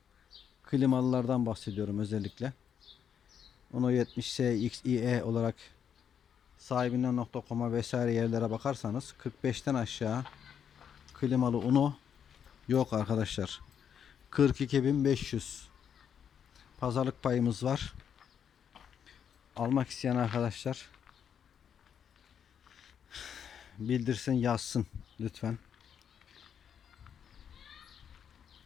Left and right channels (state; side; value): quieter; right; 8.1 dB